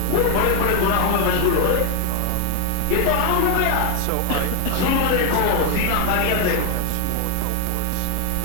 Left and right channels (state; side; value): different; both; correlation 0.00